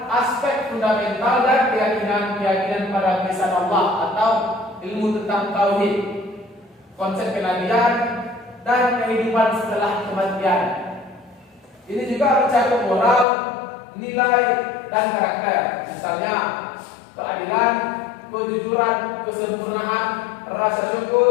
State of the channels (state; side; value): drops out; right; at 13.2 s